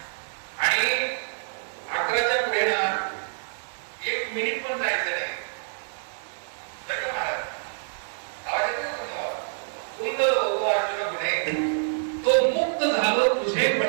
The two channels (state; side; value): silent; left; 60 dB below the other